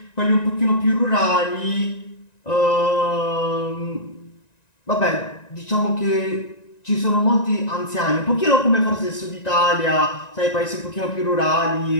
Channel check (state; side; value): late; right; 1.9 ms